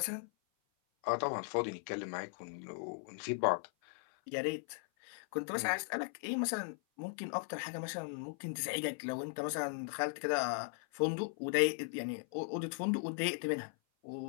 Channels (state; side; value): silent; right; 52 dB below the other